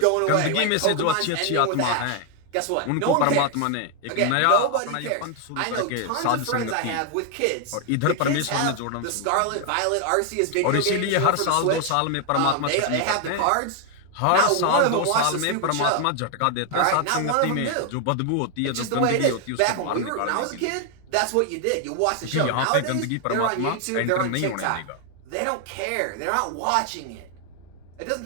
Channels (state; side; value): different; both; correlation 0.00